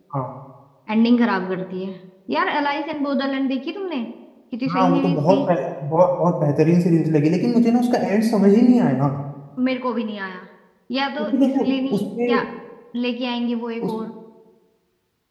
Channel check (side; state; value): both; identical; correlation 1.00